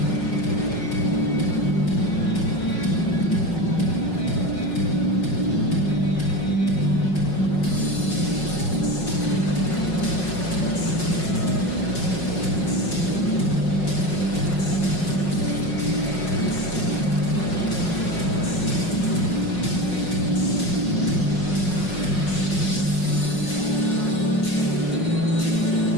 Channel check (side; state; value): right; late; 5.5 ms